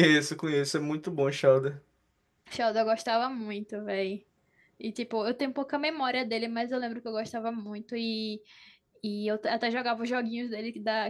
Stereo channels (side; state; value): both; identical; correlation 1.00